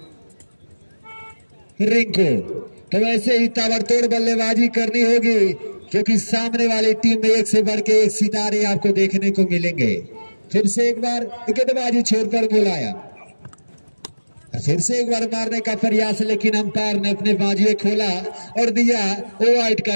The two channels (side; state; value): both; inverted; correlation -1.00